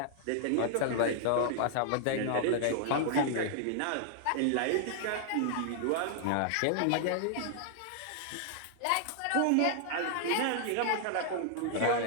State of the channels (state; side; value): different; both; correlation 0.00